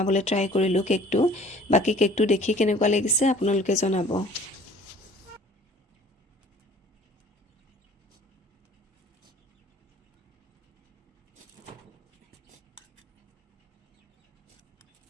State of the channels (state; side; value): normal; both; correlation 0.51